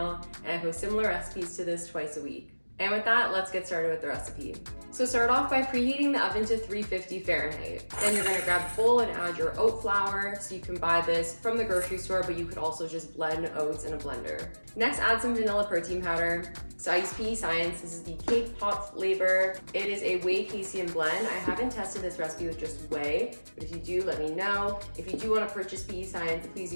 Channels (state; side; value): inverted; both; correlation -1.00